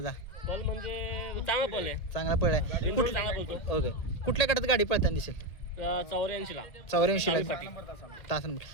पल म्हणजे चांगला पल आहे. चांगला पळ आहे. बिनजोड चांगला पळतो. ओके. कुठल्या गटात गाडी पळताना दिसेल? 84 ला 84 ला तास नंबर.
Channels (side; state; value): right; late; 1.8 ms